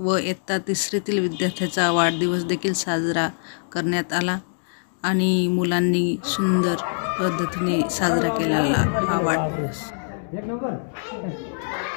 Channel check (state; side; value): silent; right; digital silence